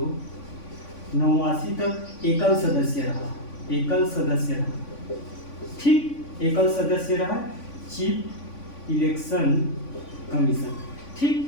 तक एकल सदस्य रहा, ठीक, एकल सदस्य रहा चीफ इलेक्शन कमीशन,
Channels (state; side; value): late; right; 3.5 ms